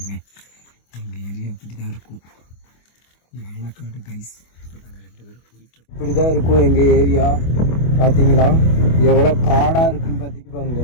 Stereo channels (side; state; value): right; late; 25 ms